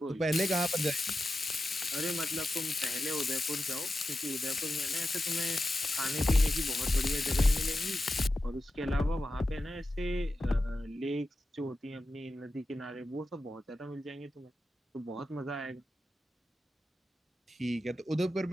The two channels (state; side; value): normal; both; correlation 0.91